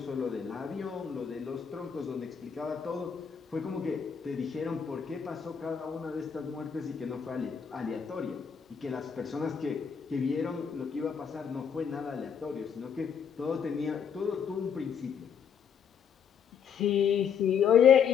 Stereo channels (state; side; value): quieter; right; 7.3 dB